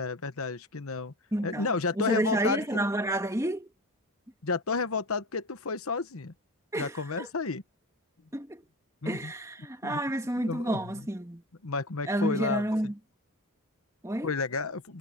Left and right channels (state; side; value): normal; both; correlation 0.30